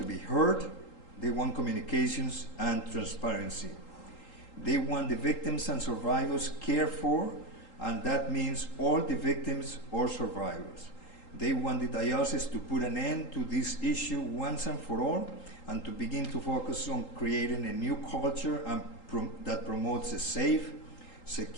be heard, they want communications and transparency. They want the victims and survivors cared for, and that means all the victims or survivors. They want the diocese to put an end to this issue once and for all, and to begin to focus on creating a new culture that promotes a safe,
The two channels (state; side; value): late; right; 3.8 ms